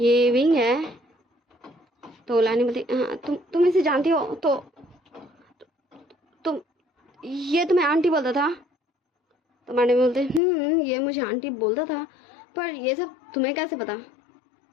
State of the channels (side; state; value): right; drops out; at 10.4 s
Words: विंग है। तो लैनी बोलती हाँ तुम इसे जानती हो? तो तुम ये तुम्हें आंटी बोलता था? तो मैडम बोलते ये मुझे आंटी बोलता था, पर ये सब तुम्हें कैसे पता?